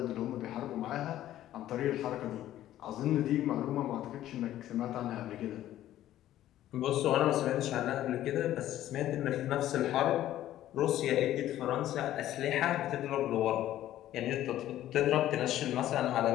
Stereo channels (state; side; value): quieter; right; 13.1 dB